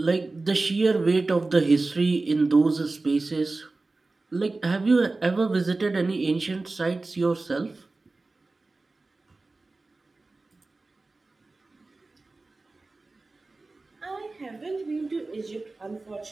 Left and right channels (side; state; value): left; quieter; 3.4 dB